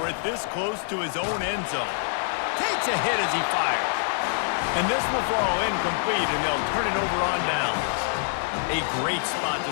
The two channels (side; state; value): right; silent; digital silence